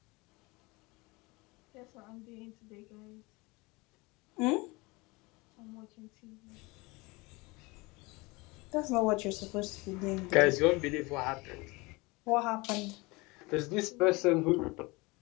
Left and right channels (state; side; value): quieter; right; 24.6 dB